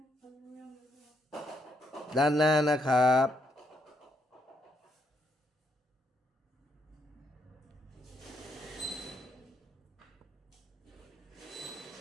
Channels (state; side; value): normal; both; correlation 0.76